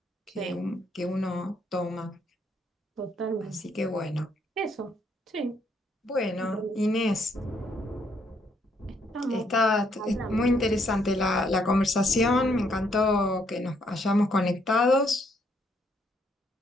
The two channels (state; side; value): normal; both; correlation 0.71